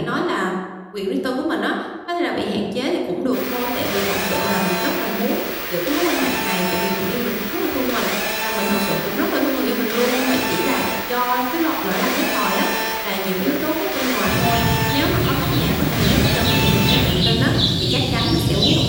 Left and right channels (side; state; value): both; identical; correlation 1.00